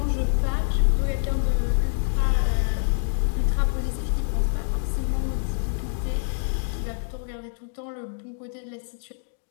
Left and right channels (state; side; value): silent; right; digital silence